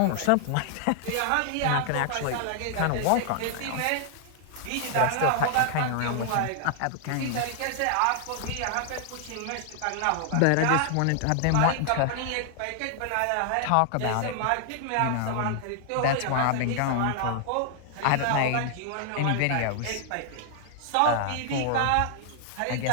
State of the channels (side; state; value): both; different; correlation 0.00